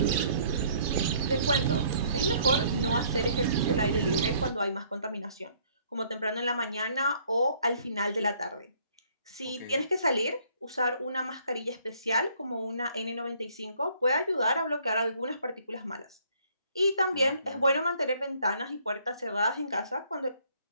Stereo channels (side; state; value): both; inverted; correlation -0.62